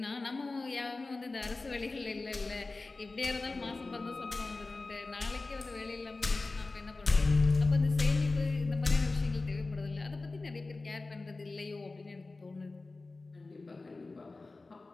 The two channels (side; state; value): right; quieter; 3.4 dB